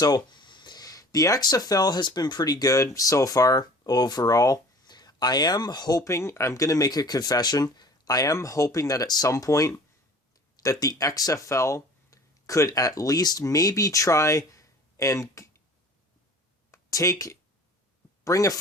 the XFL has been pretty good so far overall. I am hoping, I'm going to make a confession, I am hoping that at some point that the XFL could at least maybe try and bring a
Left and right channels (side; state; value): both; normal; correlation 0.46